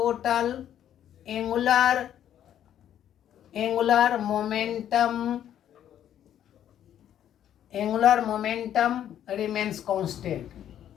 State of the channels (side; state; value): right; quieter; 10.5 dB